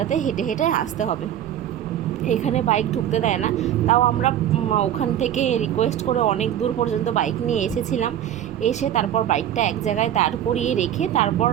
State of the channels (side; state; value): left; quieter; 10.9 dB